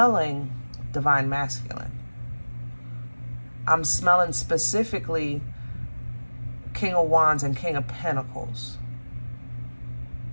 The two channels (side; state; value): both; inverted; correlation -1.00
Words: divine masculine. I'm smelling specifically King of Wands and King of Pentacles.